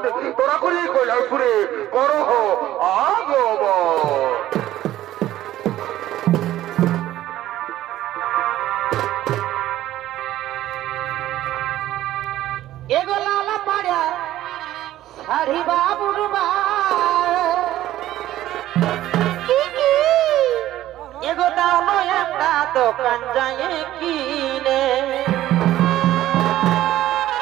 তোরা করি এই কৈলাসপুরে করহ আগমন। এগো লালা পাড়া শাড়ি বাবুর এগো দাও একটা দোকান যায় কিনে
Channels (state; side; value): quieter; left; 13.9 dB